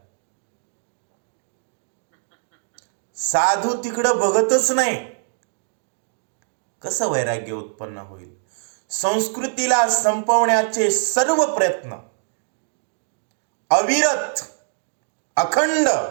साधू तिकडं बघतच नाही. कसं वैराग्य उत्पन्न होईल? संस्कृतीला संपवण्याचे सर्व प्रयत्न अविरत, अखंड,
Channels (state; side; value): silent; left; digital silence